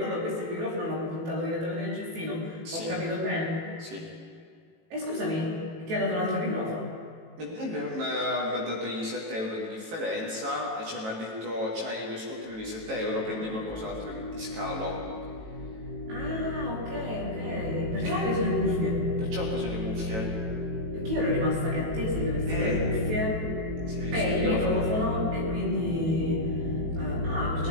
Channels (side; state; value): left; late; 18 ms